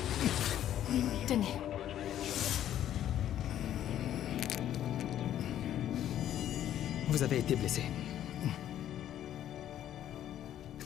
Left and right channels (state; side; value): quieter; right; 11.4 dB